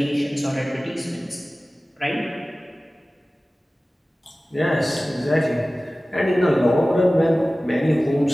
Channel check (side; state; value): both; normal; correlation 0.97